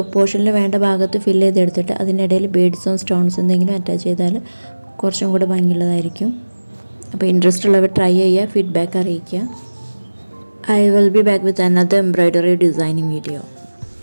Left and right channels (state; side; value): inverted; both; correlation -1.00